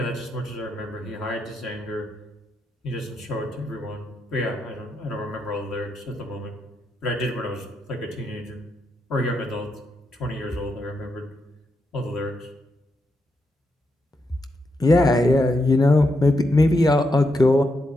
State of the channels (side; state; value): both; normal; correlation 0.83